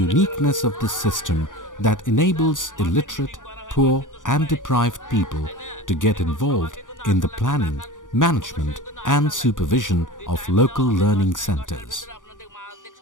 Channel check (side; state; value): right; late; 0.88 ms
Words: of this system that enables illiterate, poor and deprived people to get involved in the planning, management and supervision of local learning centers.